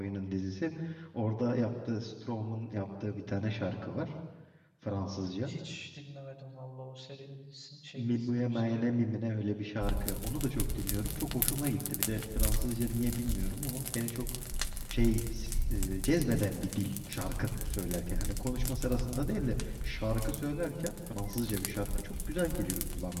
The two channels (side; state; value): both; identical; correlation 1.00